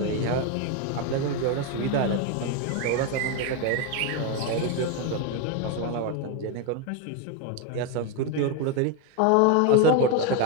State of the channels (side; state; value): both; different; correlation 0.01